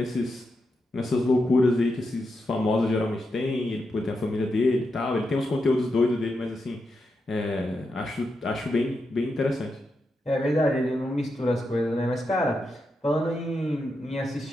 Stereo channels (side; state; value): both; normal; correlation 0.86